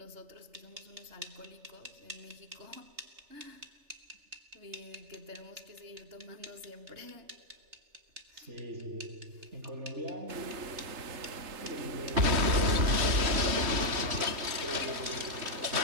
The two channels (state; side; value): late; left; 3.3 ms